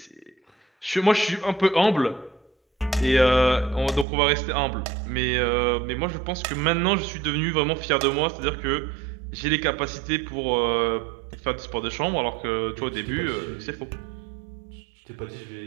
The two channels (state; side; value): drops out; left; at 4.0 s